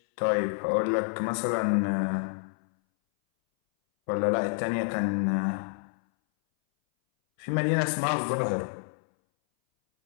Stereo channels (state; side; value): silent; right; 59 dB below the other